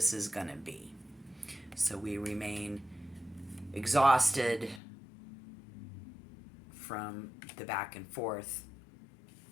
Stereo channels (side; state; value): right; drops out; at 4.8 s